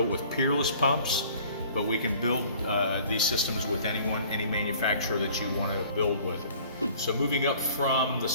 with peerless pumps, but we can build these systems with any manufacturer that you want to build with. So moving up from the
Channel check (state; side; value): inverted; both; correlation -0.51